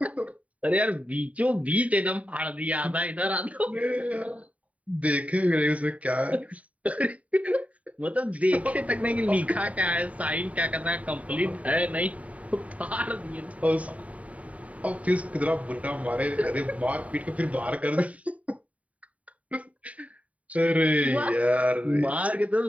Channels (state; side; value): late; left; 0.068 ms